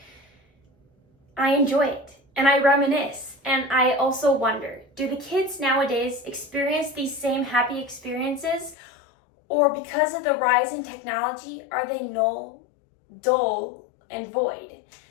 I enjoy it and I reminisce, and I also wonder, do the kids nowadays experience these same happy experiences, or because of the rise in technology, are they dull and void?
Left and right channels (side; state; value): right; drops out; at 8.8 s